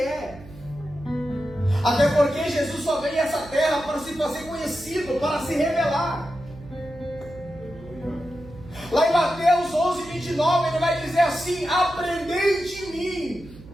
Até porque Jesus só veio a essa terra para se fazer conhecido, para se revelar. Lá em Mateus 11, 29, ele vai dizer assim: aprendei de mim,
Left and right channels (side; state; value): right; noise; hum, 19 dB below the sound